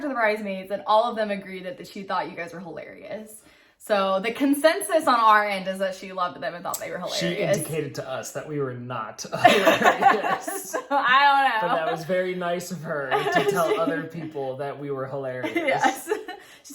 to the bridesmaids, and all of them agreed that she thought you guys were hilarious. So the consensus on our end is that she loved them and thought they were hilarious. She indicated to us that we were not hilarious. So, I don't know. But that was very nice of her to tell other people that we were hilarious. Yes. She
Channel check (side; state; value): both; identical; correlation 1.00